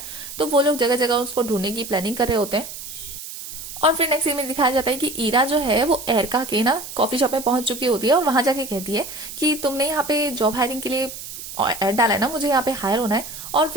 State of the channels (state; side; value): noise; right; hiss, 11 dB below the sound